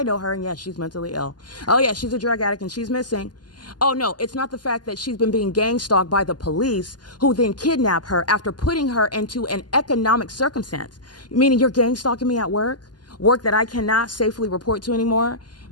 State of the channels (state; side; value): late; right; 0.70 ms